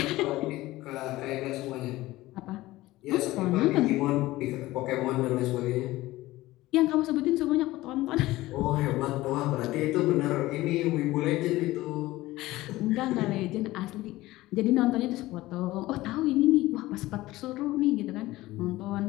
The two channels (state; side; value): quieter; right; 17.7 dB